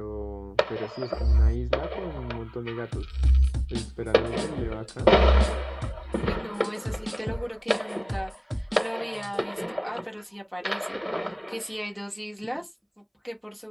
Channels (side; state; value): both; identical; correlation 1.00